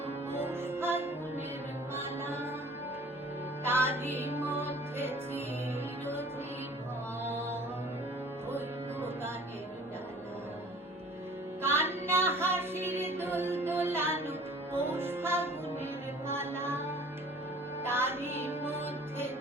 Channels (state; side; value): normal; both; correlation 0.48